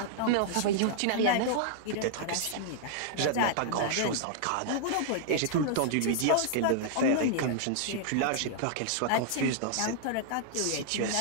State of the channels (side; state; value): both; different; correlation -0.01